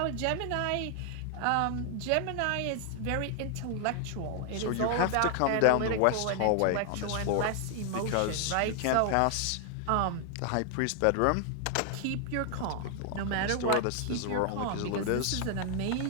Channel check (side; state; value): both; different; correlation 0.00